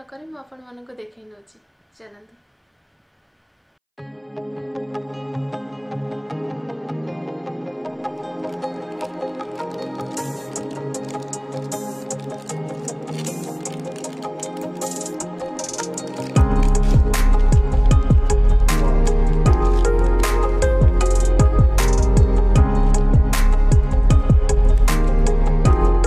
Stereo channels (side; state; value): both; identical; correlation 1.00